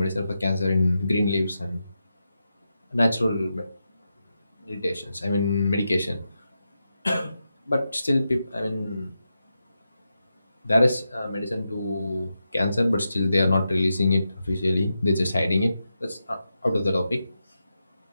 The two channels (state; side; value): inverted; both; correlation -0.88